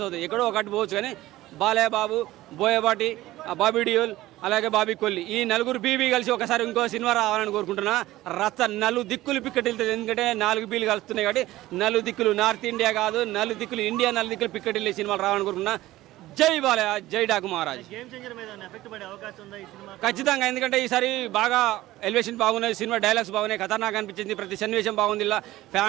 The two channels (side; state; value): left; quieter; 16.6 dB